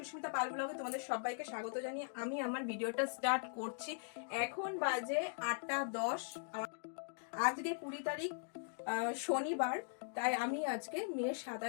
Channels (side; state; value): right; silent; digital silence